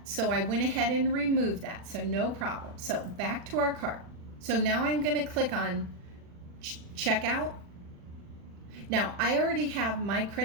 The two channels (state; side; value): late; left; 40 ms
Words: So I went ahead and removed that. So no problem. So back to our cart. So now I'm going to click on checkout. Now I already have my